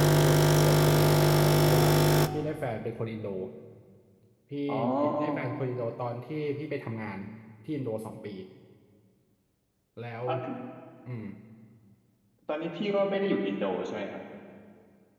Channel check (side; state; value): both; identical; correlation 1.00